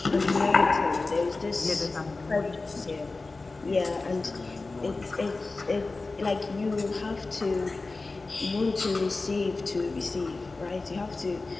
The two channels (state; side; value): quieter; right; 3.5 dB